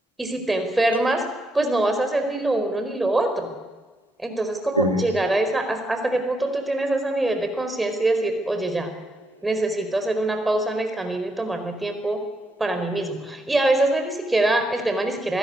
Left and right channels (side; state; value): both; normal; correlation 0.78